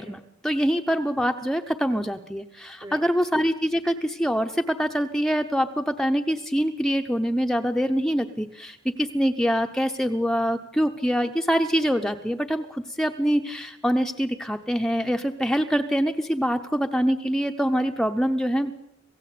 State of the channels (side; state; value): both; normal; correlation 0.93